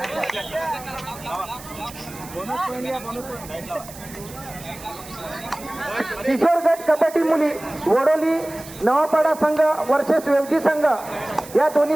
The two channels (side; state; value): right; noise; hiss, 17 dB below the sound